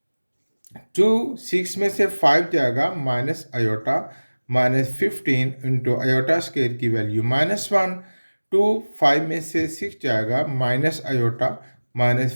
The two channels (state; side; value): inverted; both; correlation -1.00